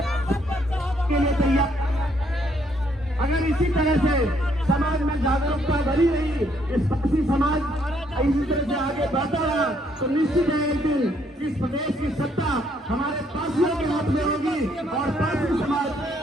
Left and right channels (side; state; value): both; normal; correlation 0.69